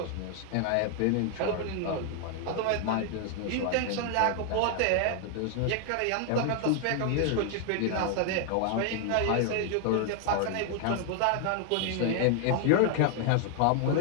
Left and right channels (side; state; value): both; different; correlation 0.00